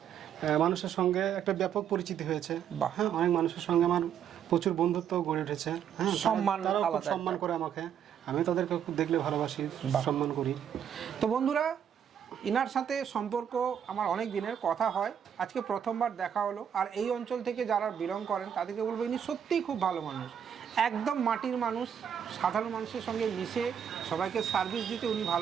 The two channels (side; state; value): left; quieter; 8.7 dB